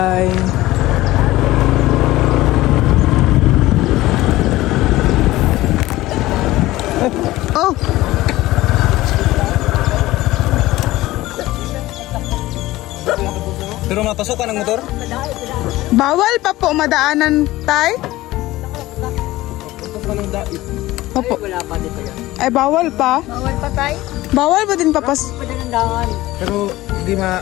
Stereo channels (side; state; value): right; quieter; 17.3 dB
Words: Oh! Pero mapasok ka ng motor? Bawal pa po madaanan tay? Opo. Ay, bawal pa? Bawal pa tayo. Bawal ba din papas? Pero hindi